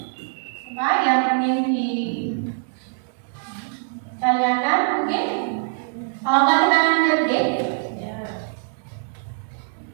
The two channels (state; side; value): silent; left; 63 dB below the other